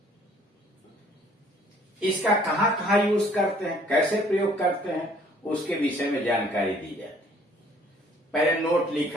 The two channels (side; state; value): both; normal; correlation 0.58